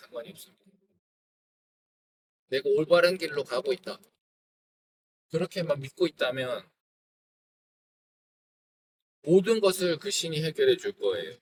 없습니다. 내가 올바른 길로 가고 있다. 그렇게만 믿고 있다면 모든 것을 그 신이 해결해 줄 거예요.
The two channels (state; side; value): identical; both; correlation 1.00